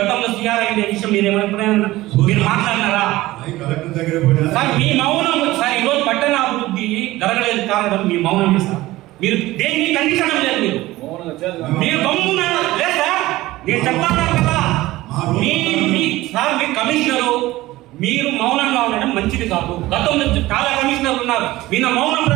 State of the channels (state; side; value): quieter; left; 17.8 dB